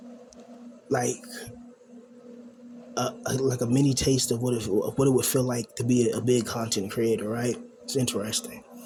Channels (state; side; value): identical; both; correlation 1.00